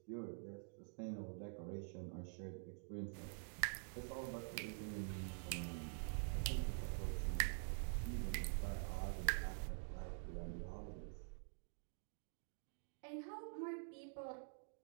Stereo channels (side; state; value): left; silent; digital silence